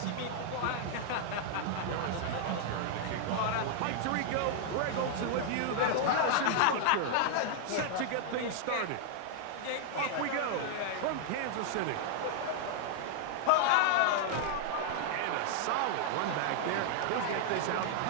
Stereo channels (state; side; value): different; both; correlation 0.00